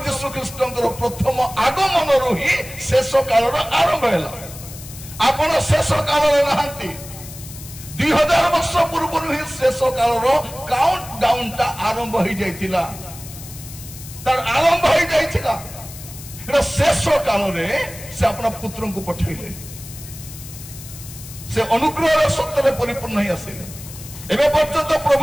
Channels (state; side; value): noise; left; hiss, 15 dB below the sound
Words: यीशु ख्रीस्तंकर प्रथम आगमन रो ही शेष काल रो आरंभ हला आपण शेष काल रे नहंती 2000 वर्ष पूर्व ही शेष काल रो काउंट डाउन ता आरंभ हो जाइतिला तार आरंभ हो जाइतिला एटा शेष काल रे से अपना पुत्र को पठैले से अनुग्रह रे सत्य रे परिपूर्ण ही आसिले एबे पर्यंत